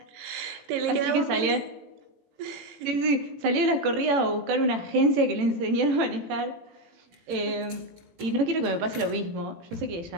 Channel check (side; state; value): left; late; 18 ms